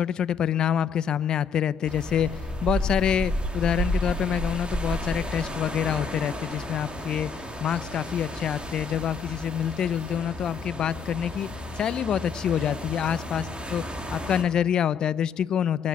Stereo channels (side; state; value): right; quieter; 6.5 dB